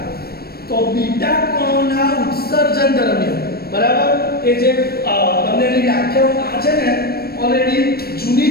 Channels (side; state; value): right; late; 0.45 ms